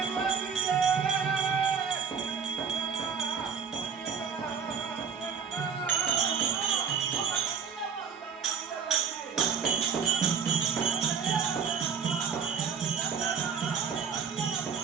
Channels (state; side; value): quieter; left; 6.7 dB